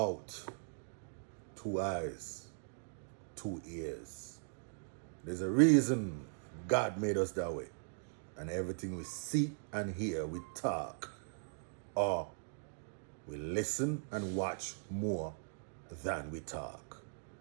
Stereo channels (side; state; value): left; silent; digital silence